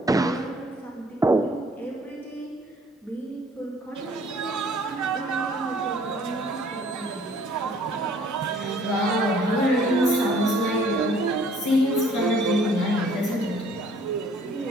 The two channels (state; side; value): normal; both; correlation 0.57